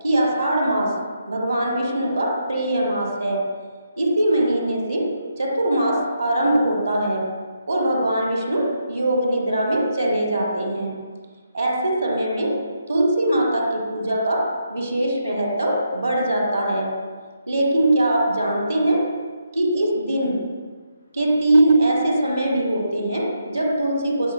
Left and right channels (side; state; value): both; inverted; correlation -0.81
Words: कि आषाढ़ मास भगवान विष्णु का प्रिय मास है। इसी महीने से चतुर्मास आरंभ होता है और भगवान विष्णु योग निद्रा में चले जाते हैं। ऐसे समय में तुलसी माता की पूजा का विशेष महत्व बढ़ जाता है। लेकिन क्या आप जानते हैं कि इस दिन के 3 ऐसे समय भी होते हैं जब तुलसी को